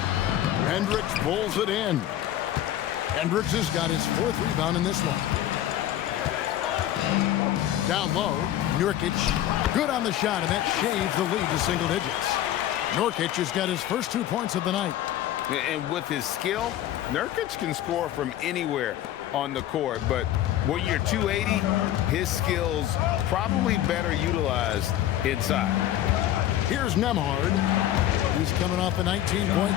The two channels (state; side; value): quieter; right; 12.5 dB